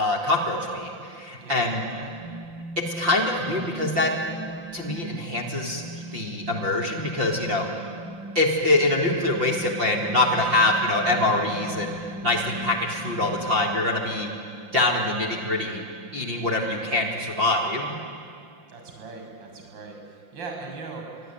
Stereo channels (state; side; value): late; left; 5.7 ms